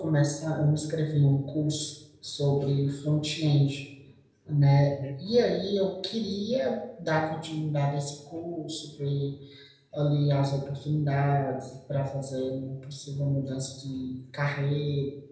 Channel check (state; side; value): identical; both; correlation 1.00